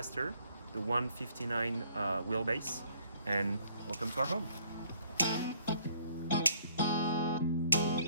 the 159 wheelbase, and welcome to our home.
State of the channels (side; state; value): both; inverted; correlation -0.63